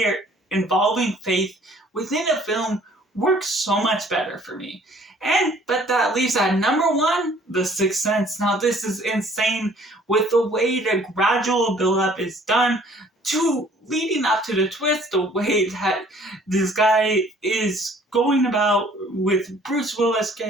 involving faith within a film works so much better for me. But that leaves at number 1, The Sixth Sense. Now this is insane with the way the gradual build-up is done to leading up to the twist, the way that this guy is going about with Bruce Willis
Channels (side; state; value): both; normal; correlation 0.56